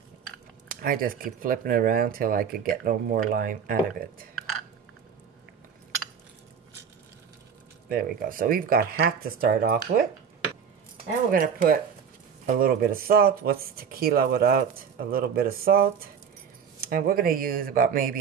I just keep flipping it around till I could get no more lime out of it. There we go. So we've got half to start off with. And we're going to put a little bit of salt. What's tequila without a little bit of salt? And we're going to use about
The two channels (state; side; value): quieter; left; 7.1 dB